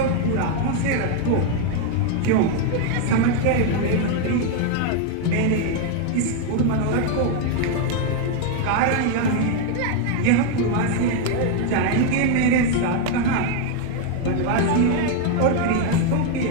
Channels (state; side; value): different; both; correlation 0.01